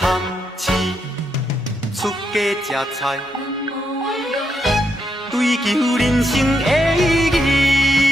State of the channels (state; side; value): normal; both; correlation 0.80